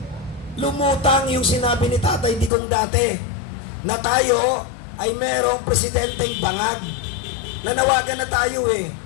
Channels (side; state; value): right; drops out; at 2.5 s